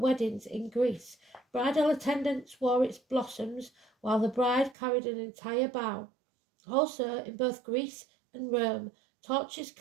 in Greece. Bridal attendants wore its blossoms, while the bride carried an entire bough. Also, in both Greece and Rome, torches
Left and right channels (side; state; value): left; drops out; at 4.8 s